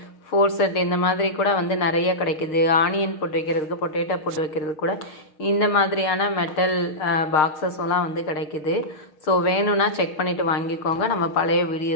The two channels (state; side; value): late; right; 6.6 ms